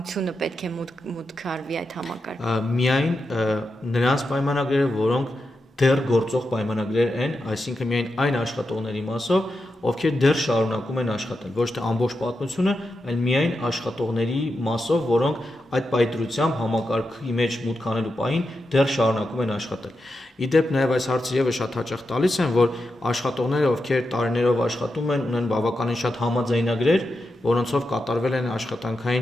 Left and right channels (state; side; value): normal; both; correlation 0.88